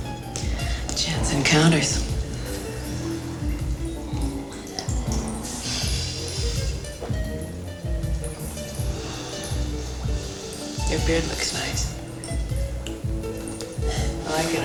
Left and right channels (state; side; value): identical; both; correlation 1.00